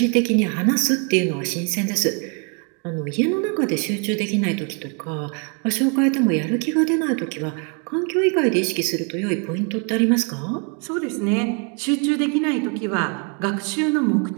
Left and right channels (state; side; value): quieter; left; 37.3 dB